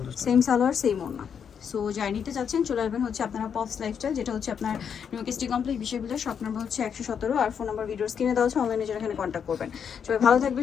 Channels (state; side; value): quieter; right; 7.4 dB